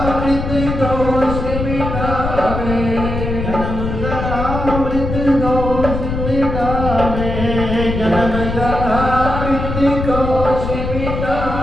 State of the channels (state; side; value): noise; left; rumble, 4 dB below the sound